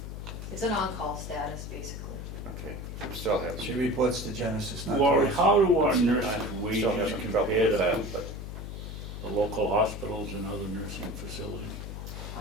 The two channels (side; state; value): left; noise; hum, 8 dB below the sound